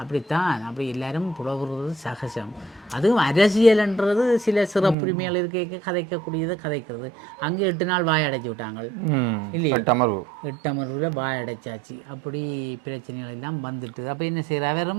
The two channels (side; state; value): left; drops out; at 5.0 s